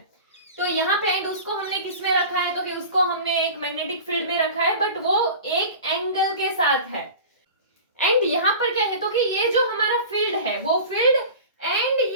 तो यहाँ पे एंड उसको हमने किस में रखा है, तो कि उसको हमने एक मैग्नेटिक फील्ड में रखा है, बट वो एक एंगल के साथ है। एंड यहाँ पर क्या है, तो कि ये जो हमारा फील्ड है वो फील्ड एंड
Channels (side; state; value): both; inverted; correlation -0.37